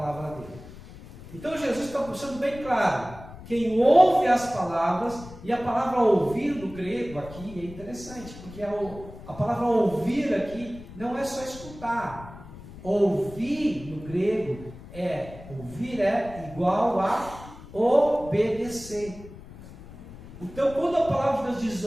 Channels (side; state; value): left; noise; rumble, 16 dB below the sound